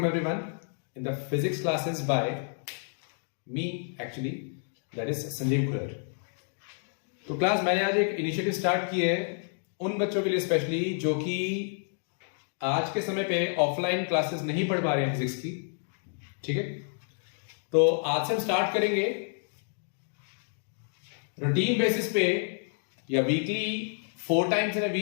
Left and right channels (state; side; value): silent; right; 58 dB below the other